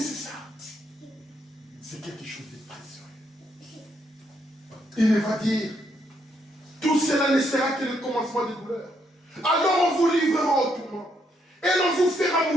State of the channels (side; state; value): both; normal; correlation 0.75